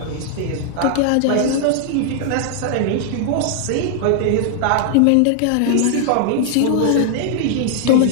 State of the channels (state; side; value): different; both; correlation 0.00